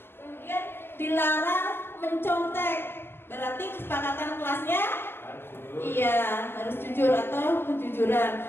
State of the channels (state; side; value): late; right; 0.11 ms